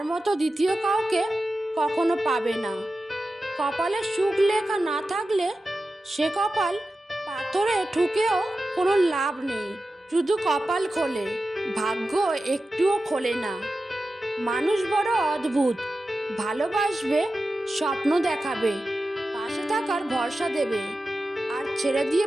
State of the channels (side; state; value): both; normal; correlation 0.93